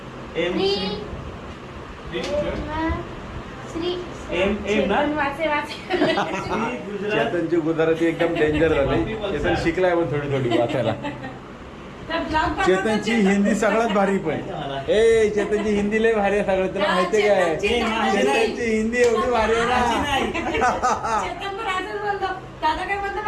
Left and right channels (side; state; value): both; identical; correlation 1.00